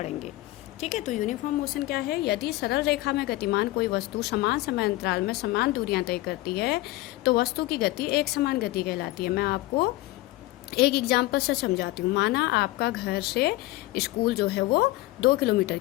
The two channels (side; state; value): right; quieter; 18.3 dB